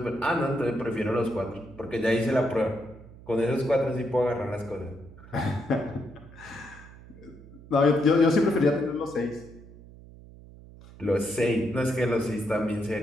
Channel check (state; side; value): noise; right; hum, 19 dB below the sound